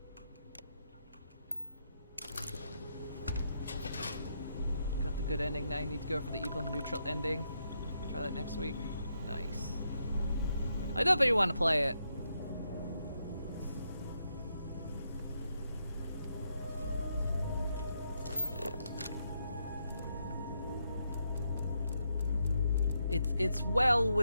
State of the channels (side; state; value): both; inverted; correlation -0.80